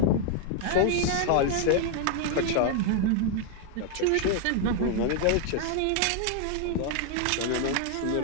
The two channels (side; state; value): both; different; correlation 0.00